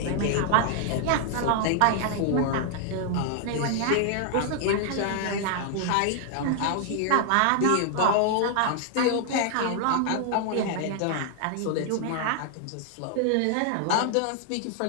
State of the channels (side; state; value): both; different; correlation 0.00